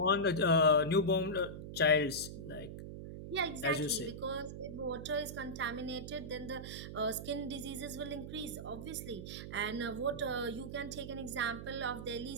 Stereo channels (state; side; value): noise; right; hum, 9 dB below the sound